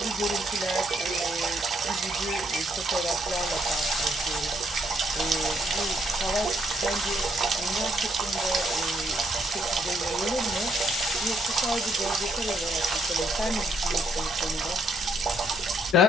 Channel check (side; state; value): both; normal; correlation 0.72